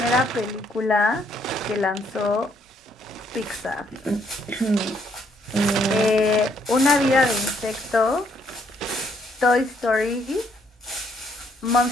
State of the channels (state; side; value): normal; both; correlation 0.70